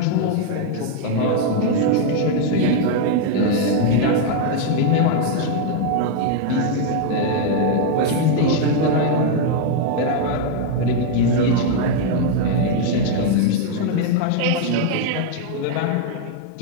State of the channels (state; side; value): different; both; correlation 0.00